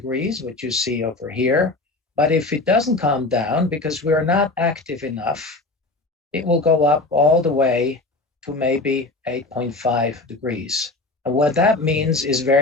which you see over here. But if it doesn't calm down, because we're not active enough, it will go up all the way to maybe 8.5 degrees. And what that means is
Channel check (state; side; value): quieter; right; 3.2 dB